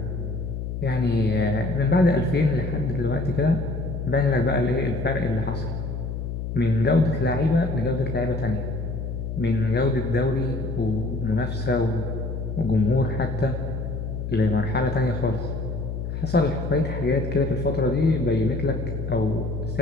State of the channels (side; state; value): left; noise; hum, 5 dB below the sound